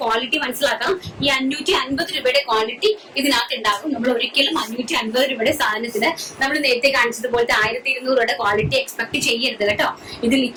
ക്വാളിറ്റി മനസ്സിലാക്കാം. ഈ 550 രൂപയുടെ ക്വാളിറ്റി ഇതിനകത്ത് ഉണ്ടാകും. നമ്മൾ ഒരിക്കലും 550 രൂപയുടെ സാധനത്തിന് നമ്മൾ നേരത്തെ കാണിച്ചതുപോലത്തെ 1200 രൂപയുടെ ക്വാളിറ്റി എക്സ്പെക്ട് ചെയ്യരുത് കേട്ടോ. ഇത്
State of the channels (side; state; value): both; identical; correlation 1.00